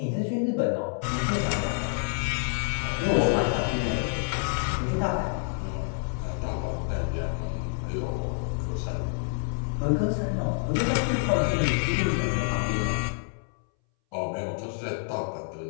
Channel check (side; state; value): right; silent; 60 dB below the other